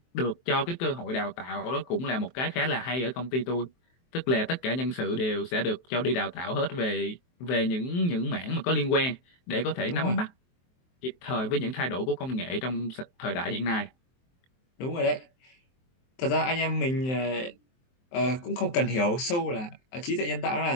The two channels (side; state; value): right; late; 23 ms